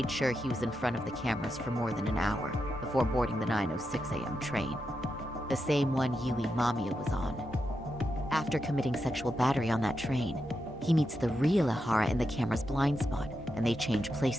sure he was in front of the cameras for more than an hour before boarding the 9:06 a.m. train, the same one Yui Mamiya was on. After committing sexual battery on that train, he meets the real Ihara in the camera's blind spot, and they change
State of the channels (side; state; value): both; normal; correlation 0.86